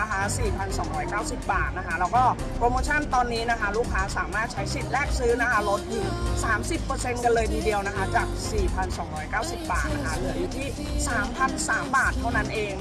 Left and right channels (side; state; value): both; identical; correlation 1.00